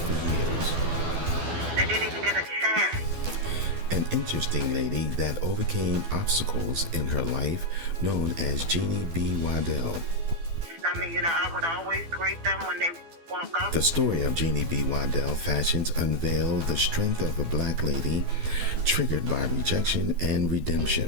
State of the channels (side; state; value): left; late; 12 ms